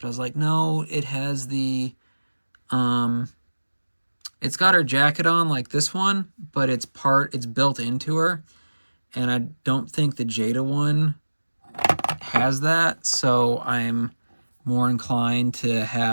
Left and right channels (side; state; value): both; inverted; correlation -1.00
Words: I was like, no, it has the, it's got her jacket on like this one, but it's built into her, and I don't think the Jada one has that, so I'm more inclined to